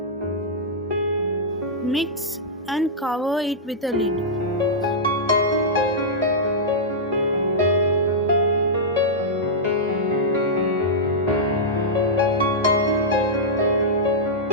Mix and cover it with a lid.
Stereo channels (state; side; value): normal; both; correlation -0.10